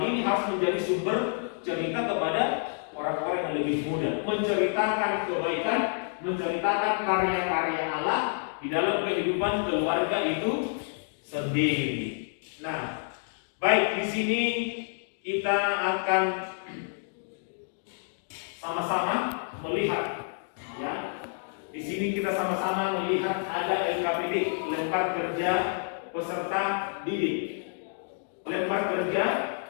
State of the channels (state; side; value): silent; right; 59 dB below the other